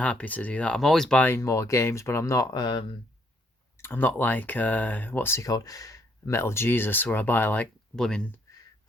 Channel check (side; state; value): both; normal; correlation 0.70